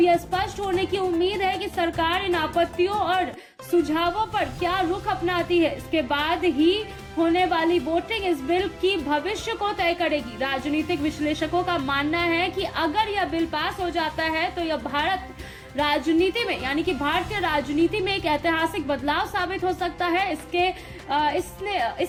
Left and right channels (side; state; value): both; identical; correlation 1.00